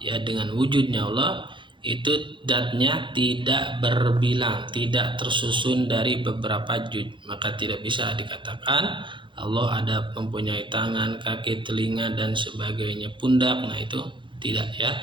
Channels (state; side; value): late; left; 0.23 ms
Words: ya, dengan wujudnya Allah, itu zatnya tidak berbilang, tidak tersusun dari beberapa juz. Maka tidak bisa dikatakan Allah ada mempunyai tangan, kaki, telinga dan sebagainya, pundak. Nah, itu tidak, ya.